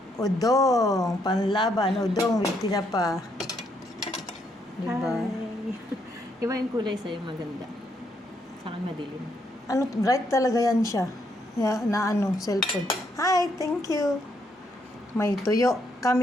Udong. Panlaban. Udong with tinapa. Diba? Hi. Iba yung kulay sa'yo maganda. Sa akin madilim. Bright talaga yan siya. Cellphone. Hi, thank you. May tuyo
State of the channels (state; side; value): normal; both; correlation 0.74